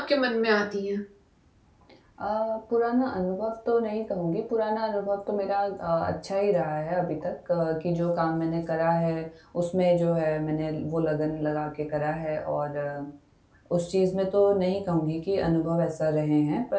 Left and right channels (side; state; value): both; identical; correlation 1.00